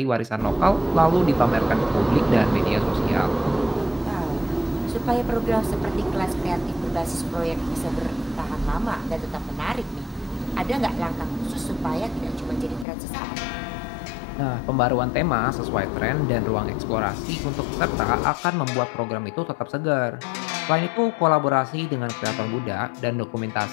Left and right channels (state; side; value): drops out; right; at 12.9 s